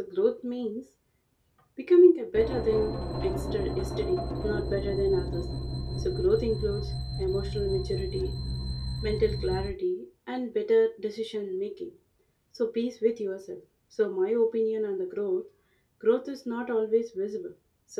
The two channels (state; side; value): identical; both; correlation 1.00